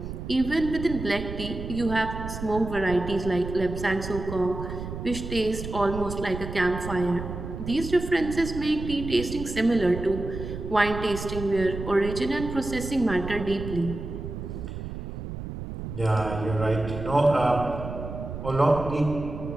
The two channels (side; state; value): right; noise; rumble, 8 dB below the sound